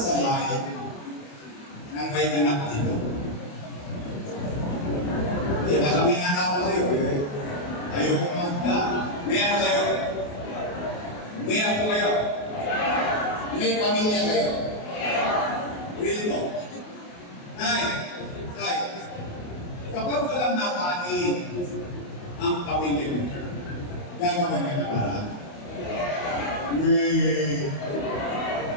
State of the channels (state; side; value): late; right; 28 ms